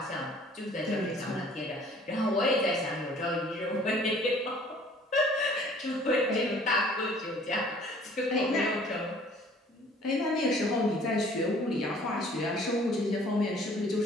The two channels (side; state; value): both; normal; correlation 0.54